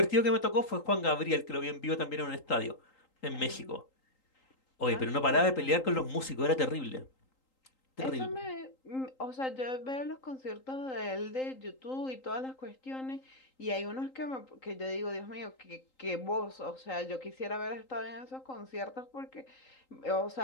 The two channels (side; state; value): right; late; 3.8 ms